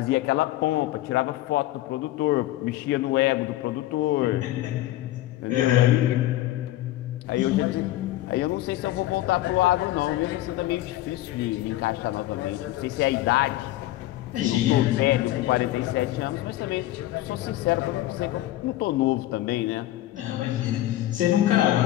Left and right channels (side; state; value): right; quieter; 15.3 dB